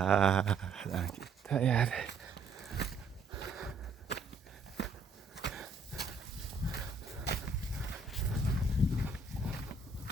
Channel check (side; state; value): left; quieter; 3.8 dB